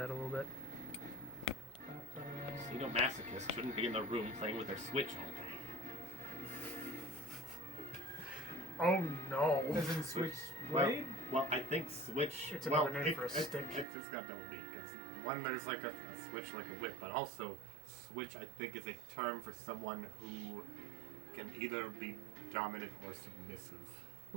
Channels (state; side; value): drops out; left; at 13.9 s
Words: a little bit. Masochists shouldn't be in the room playing with their Switch all day. Oh no. As in Switchblade? Well, I think Switch. It's well, another name for a stick. It's got double meaning. Because one, there's like a switch like a whip, but also Switch, I think, is a term for someone who can either be dominant or submissive.